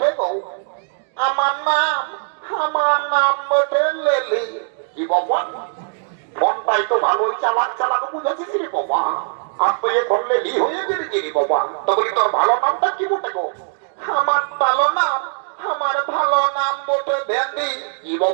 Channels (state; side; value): silent; left; digital silence